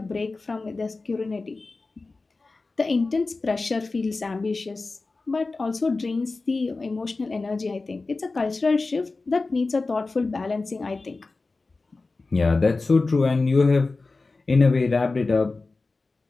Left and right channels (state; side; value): quieter; right; 3.6 dB